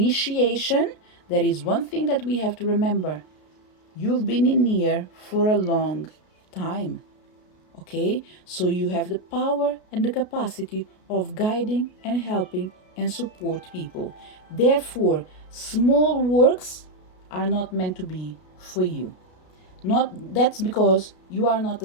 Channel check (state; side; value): late; right; 33 ms